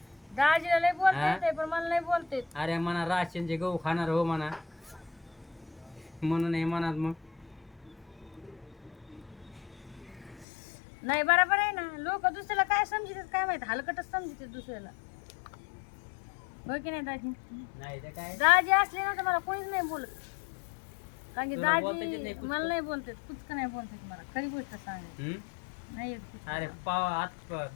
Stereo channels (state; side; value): drops out; right; at 10.5 s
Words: दाजीला लय बोलता येते पण मला नाही बोलता येत. अरे म्हणा राशनचे गहू खाणार हो म्हणा म्हणून हे म्हणा मग. नाही बरोबर आहे ना. लोक दुसऱ्याला काय समजतात काय माहित, हलकटच समजतात दुसऱ्याला. हो की नाही दाजी? नाही तर काय दाजी असले ना तर मला कोणीच नाही बोलत. कारण की तुला बोलता येत दाजी नाही कुठं? मला नाही बोलतात, कुचकं नाही बोलतात मला. खरी गोष्ट सांगायची हम्म? नाही येत कुचकं. अरे पाव